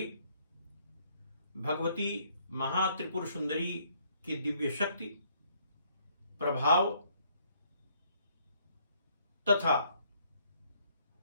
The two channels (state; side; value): inverted; both; correlation -0.67